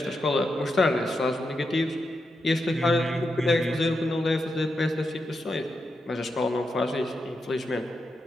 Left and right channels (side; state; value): both; normal; correlation 0.86